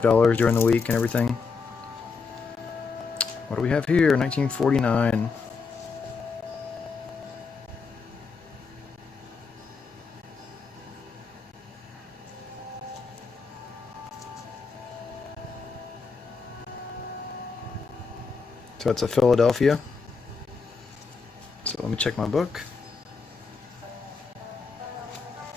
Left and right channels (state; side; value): quieter; right; 4.9 dB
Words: dollars during the week and everything. What do we have here? 1949. So it's a Philadelphia. So let me check my book.